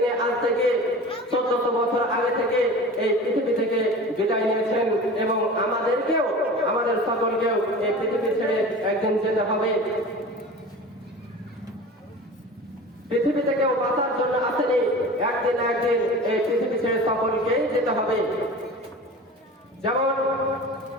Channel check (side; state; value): both; normal; correlation 0.36